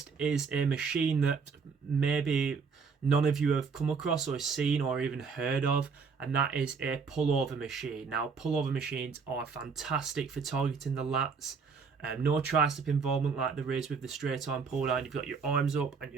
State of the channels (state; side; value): quieter; left; 5.4 dB